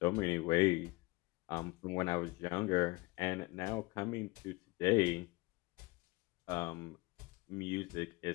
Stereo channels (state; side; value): quieter; right; 23.7 dB